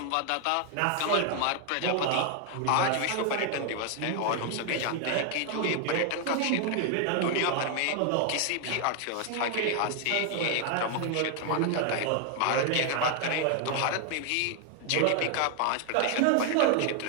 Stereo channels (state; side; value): different; both; correlation 0.00